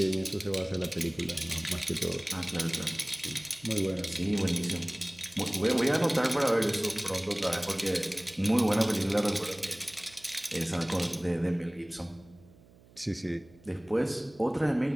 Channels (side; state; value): right; noise; hum, 26 dB below the sound